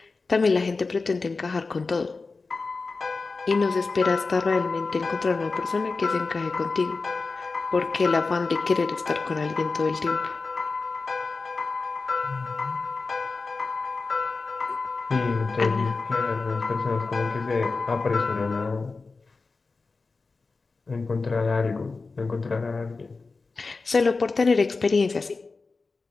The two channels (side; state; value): right; quieter; 4.0 dB